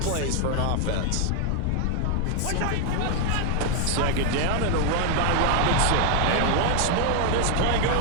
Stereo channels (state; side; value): different; both; correlation 0.00